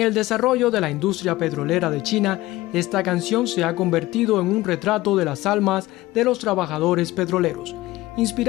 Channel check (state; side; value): quieter; right; 18.0 dB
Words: desarrollo de la industria petrolera de China, esta canción se ha convertido en un retrato de las almas de los trabajadores petroleros,